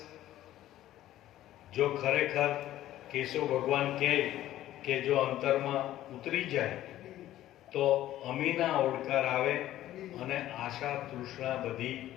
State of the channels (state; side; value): quieter; right; 13.7 dB